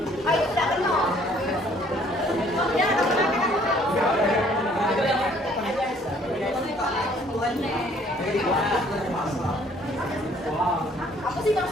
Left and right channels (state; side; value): normal; both; correlation 0.60